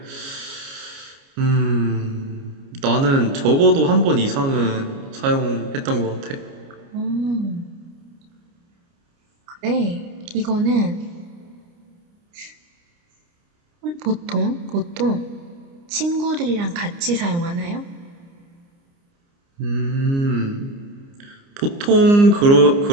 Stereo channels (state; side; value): late; left; 29 ms